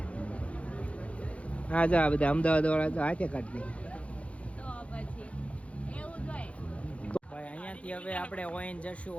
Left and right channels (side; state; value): right; late; 0.063 ms